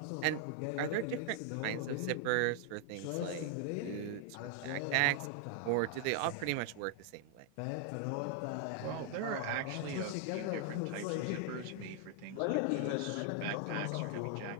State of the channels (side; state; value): both; different; correlation 0.00